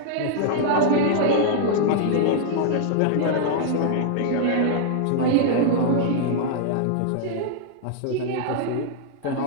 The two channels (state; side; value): different; both; correlation -0.01